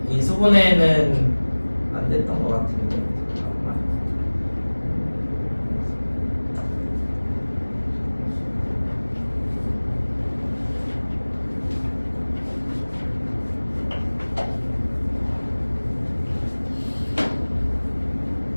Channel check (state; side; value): inverted; both; correlation -1.00